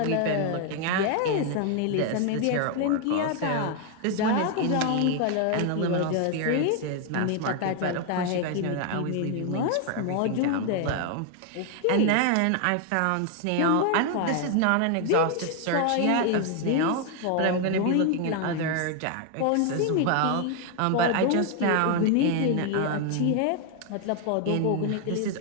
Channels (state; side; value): different; both; correlation 0.00